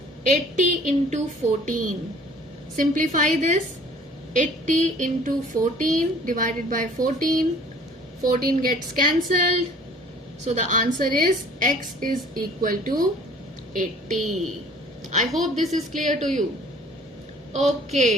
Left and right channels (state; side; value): normal; both; correlation 0.52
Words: 80 into 14. Simplify this. 80 into 14 divided by 14. 14 gets cancelled. So the answer is x is equal to 80. I hope this is clear to you.